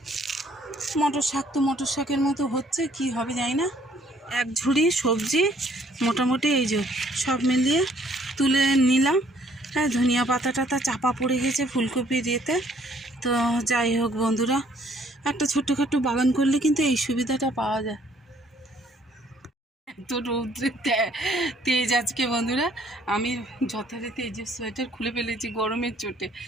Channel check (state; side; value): normal; both; correlation 0.63